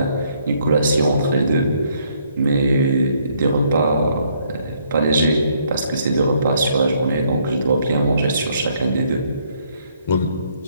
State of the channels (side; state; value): both; inverted; correlation -0.69